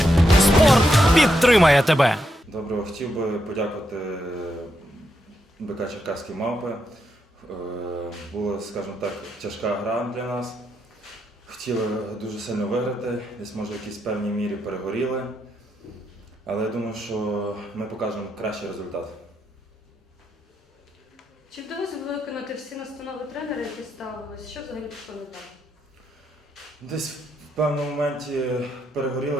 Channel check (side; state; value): both; normal; correlation 0.81